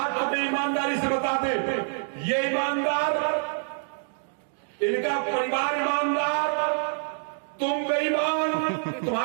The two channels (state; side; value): silent; left; digital silence